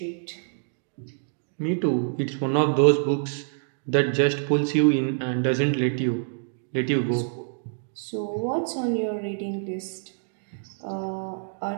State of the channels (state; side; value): silent; left; digital silence